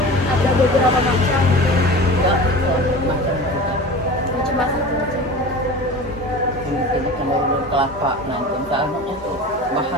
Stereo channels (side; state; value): both; normal; correlation 0.35